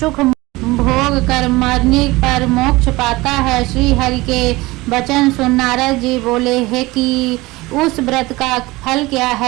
भोग कर मरने पर मोक्ष पाता है। श्री हरि के वचन सुन नारद जी बोले, है कि उस व्रत का फल क्या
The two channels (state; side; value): quieter; left; 21.0 dB